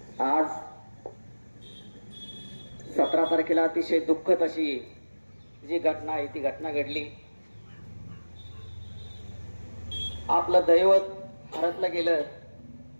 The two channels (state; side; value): inverted; both; correlation -1.00